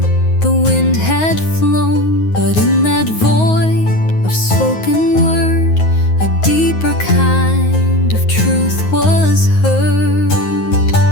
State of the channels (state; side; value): late; right; 9.5 ms